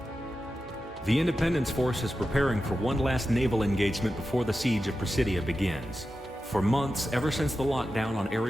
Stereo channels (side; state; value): both; normal; correlation 0.92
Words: The Independence Force is preparing for one last naval engagement before the siege of Presidia begins. For months, ever since the lockdown on